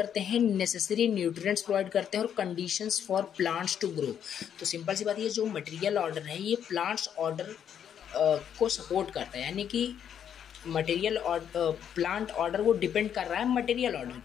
हैं नेसेसरी न्यूट्रिएंट्स प्रोवाइड करते हैं और conditions for plants to grow. तो सिंपल सी बात है, ये जो मटेरियल ऑर्डर है ये प्लांट्स ऑर्डर को सपोर्ट करता है, यानी कि मटेरियल प्लांट ऑर्डर वो डिपेंड कर रहा है मटेरियल ऑर्डर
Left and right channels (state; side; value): quieter; right; 8.9 dB